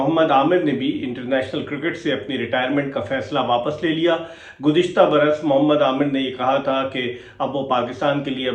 आमिर ने भी इंटरनेशनल क्रिकेट से अपनी रिटायरमेंट का फैसला वापस ले लिया। गुज़िश्ता बरस मोहम्मद आमिर ने ये कहा था कि अब वो पाकिस्तान के लिए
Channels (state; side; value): identical; both; correlation 1.00